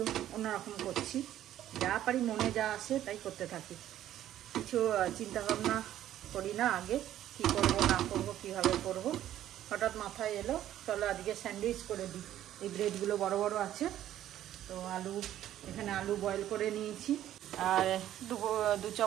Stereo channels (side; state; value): left; quieter; 12.2 dB